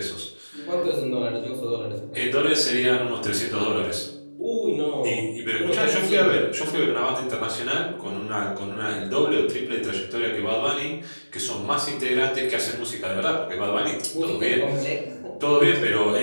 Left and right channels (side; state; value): both; inverted; correlation -1.00